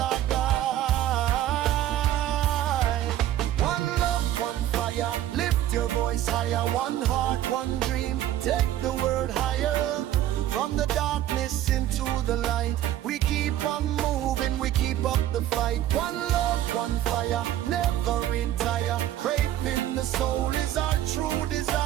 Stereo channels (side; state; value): left; quieter; 12.6 dB